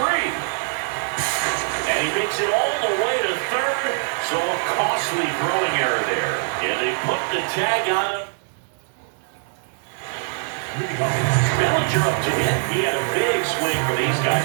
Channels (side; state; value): left; silent; 62 dB below the other